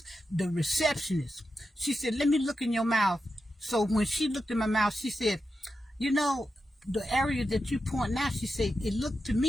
the receptionist, she said, let me look in your mouth. So when she looked in my mouth, she said, you know, the area that you point out, she said, it looked to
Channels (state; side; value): normal; both; correlation 0.89